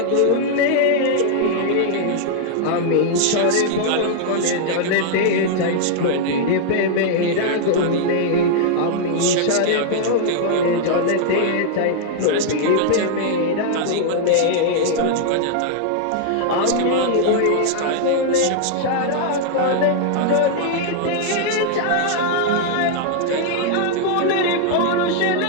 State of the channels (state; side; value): different; both; correlation -0.01